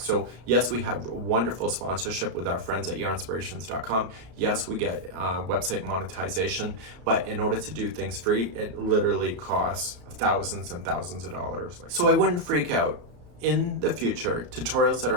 yes, we have wonderful sponsorship with our friends at yarnspirations.com. Yes, we get website monetization, but in order to do things free, it literally costs thousands and thousands of dollars. So I wouldn't freak out. In the future, tutorials that are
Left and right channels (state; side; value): late; left; 33 ms